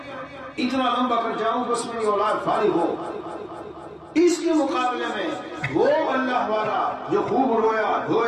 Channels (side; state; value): both; identical; correlation 1.00